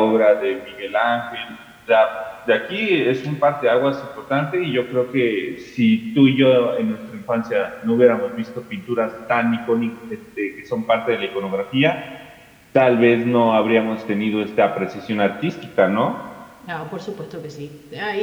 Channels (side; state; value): both; identical; correlation 1.00